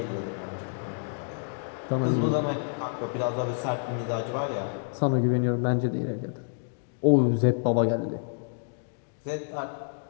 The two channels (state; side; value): silent; right; digital silence